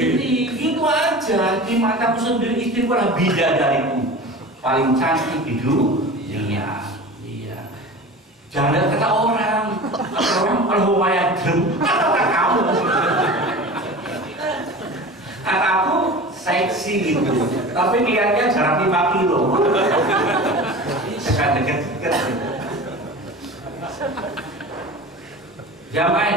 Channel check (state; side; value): normal; both; correlation 0.35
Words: Gitu aja, di mataku sendiri istriku adalah bidadariku paling cantik di dunia. Iya. Jangan kata orang kalau lumayan kata kamu. Kataku seksi gitu, tapi lihatnya jarak 5 kilo. Dekat-dekat.